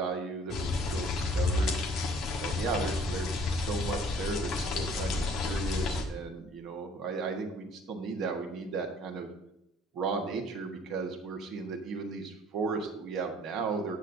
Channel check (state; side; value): normal; both; correlation 0.55